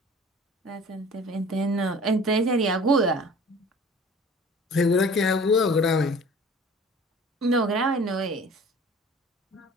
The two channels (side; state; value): both; normal; correlation 0.46